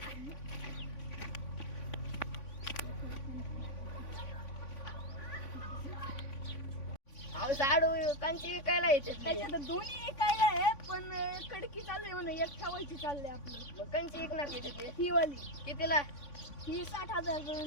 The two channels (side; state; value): right; late; 3.5 ms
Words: साडू कांची विकायला येते त्याच्यात दोन्ही विकायला आहे पण कडकी चालले म्हणून एक ठेवायची चालले आपली. मग कांची विकणार किती ते ही वाली कितीला ही 60,000